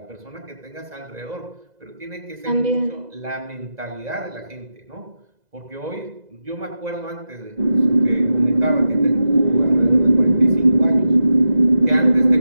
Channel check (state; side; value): late; left; 2.0 ms